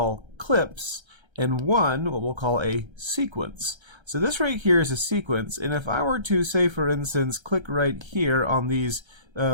clips, and 1 what we'll call a sequence. So this right here is a sequence, and if I were to, say for instance, click right here on these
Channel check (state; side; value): late; left; 1.3 ms